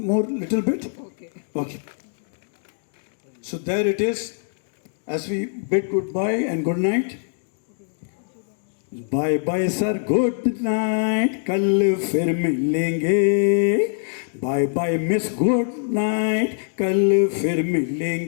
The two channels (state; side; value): silent; right; digital silence